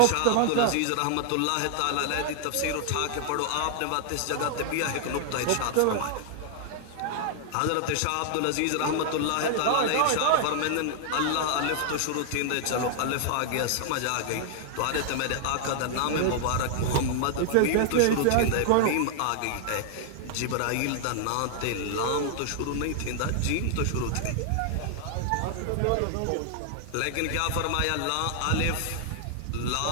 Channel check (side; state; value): both; different; correlation 0.00